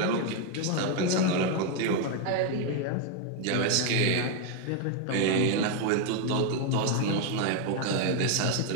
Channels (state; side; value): different; both; correlation 0.01